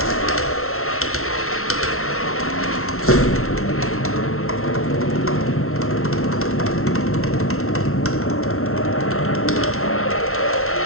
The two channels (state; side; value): late; right; 0.62 ms